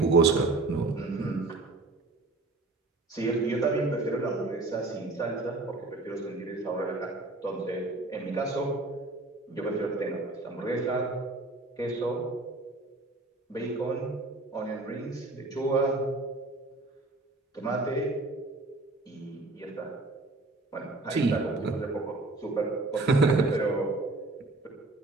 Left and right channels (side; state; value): left; quieter; 3.1 dB